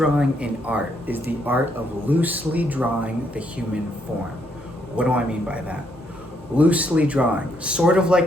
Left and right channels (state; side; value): normal; both; correlation 0.73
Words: in art is the art of loosely drawing the human form. What do I mean by that? Loosely drawing, sort of